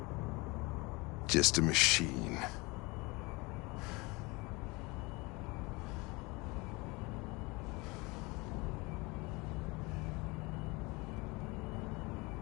Just a machine.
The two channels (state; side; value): quieter; right; 25.3 dB